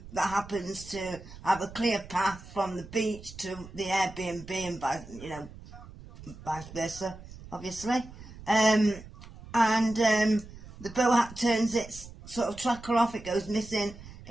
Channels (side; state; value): right; noise; rumble, 17 dB below the sound